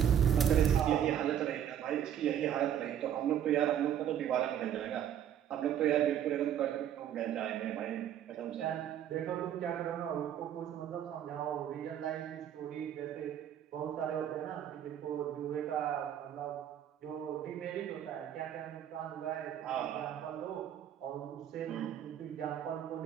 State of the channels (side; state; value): left; quieter; 9.9 dB